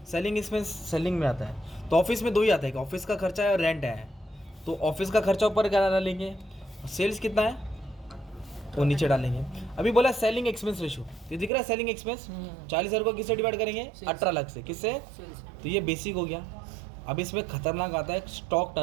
सेलिंग एक्सपेंस सेलिंग में आता है। तो ऑफिस में 2 ही आता है, ऑफिस का खर्चा है और रेंट है। तो ऑफिस का खर्चा ऊपर क्या डालेंगे, सेल्स कितना है वो नीचे डालेंगे। अभी बोला सेलिंग एक्सपेंस रेशियो, ये दिख रहा है सेलिंग एक्सपेंस 40,000 को किससे डिवाइड करेंगे? 18 लाख से। किससे? तो ये बेसिक हो गया। अब इसमें खतरनाक आता है स्टॉक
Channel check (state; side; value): drops out; left; at 11.5 s